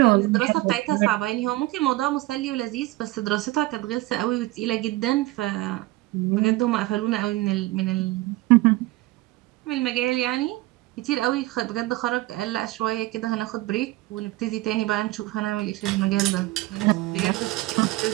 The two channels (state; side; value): quieter; left; 18.9 dB